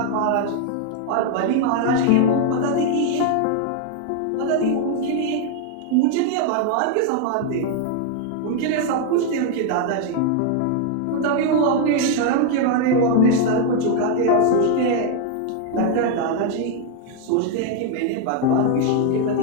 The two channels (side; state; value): both; different; correlation 0.00